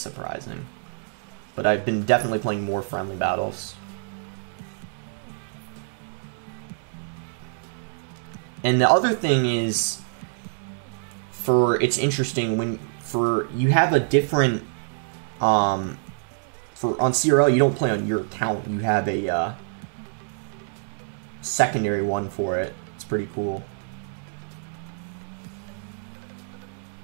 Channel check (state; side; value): silent; left; digital silence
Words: But I've been definitely playing more friendly battles. And the other thing is, it's interesting when you have a different on CRL you don't play on your account. You have a secondary one for it. It's pretty cool.